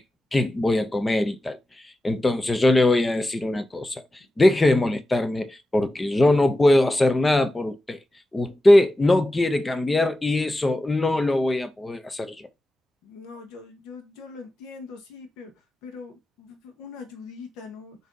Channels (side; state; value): both; normal; correlation 0.93